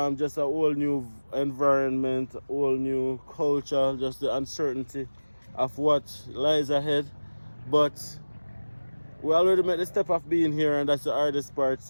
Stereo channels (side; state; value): both; inverted; correlation -1.00